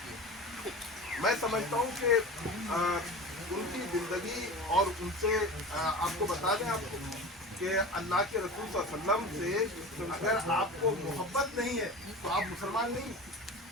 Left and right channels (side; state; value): both; normal; correlation 0.33